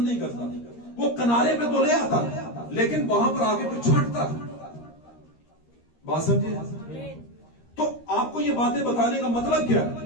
नहीं करता, वो किनारे पे तो ले आता लेकिन वहां पर आगे फिर छांटता। बात समझे? तो आपको ये बातें बताने का मतलब क्या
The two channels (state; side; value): late; right; 13 ms